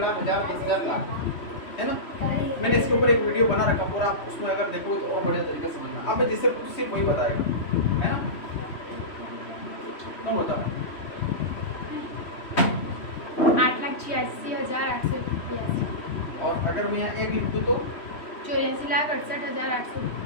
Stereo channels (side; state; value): right; late; 3.1 ms